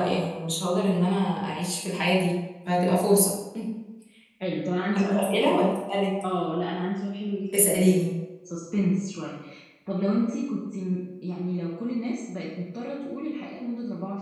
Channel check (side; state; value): both; identical; correlation 1.00